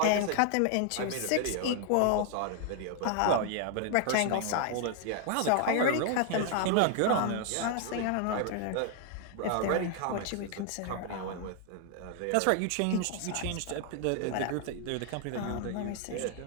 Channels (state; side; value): different; both; correlation 0.00